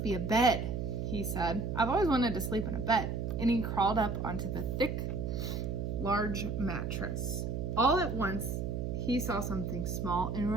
be a bed," he said. "I've always wanted to sleep in a bed." And he crawled up onto the thick, large mattress. All at once, he saw something small and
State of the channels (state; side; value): noise; right; hum, 2 dB below the sound